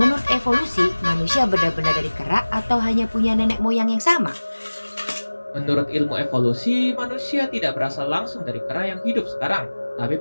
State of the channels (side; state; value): both; inverted; correlation -1.00